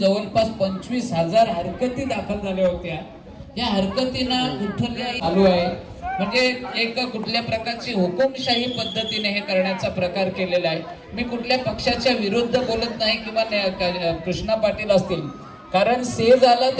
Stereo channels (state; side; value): identical; both; correlation 1.00